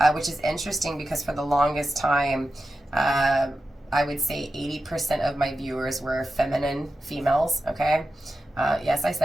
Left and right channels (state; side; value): normal; both; correlation 0.91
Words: which is interesting because for the longest time, I would say 80% of my viewers were feminine females, okay? Yes, I